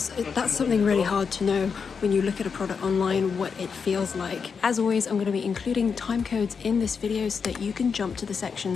that's something really hard to know when you look at a product online, what it feels like. As always, I'm going to be including time codes in this video so that you can jump to the section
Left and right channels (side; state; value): right; quieter; 5.9 dB